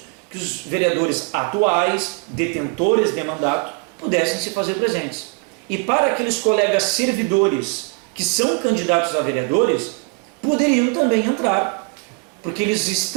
que os vereadores atuais, detentores de mandato, pudessem se fazer presentes. E para aqueles colegas servidores que são candidatos a vereadores, poderiam também entrar, porque eles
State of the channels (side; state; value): left; quieter; 33.3 dB